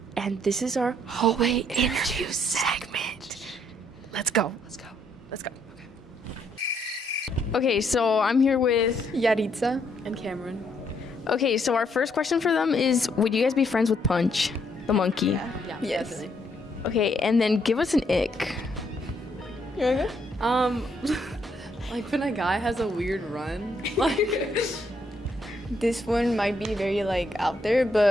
And this is our hallway interview segment. Let's go. Let's go. Okay, so I'm here with Yaritza and Cameron. Okay, so our first question for them is, would you guys be friends with Punch, the monkey? Yeah, yes. Definitely. Okay, and then give us an ick. You okay? Like when a guy has a weird run, like this one might be very like out there,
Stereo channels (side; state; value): both; normal; correlation 0.72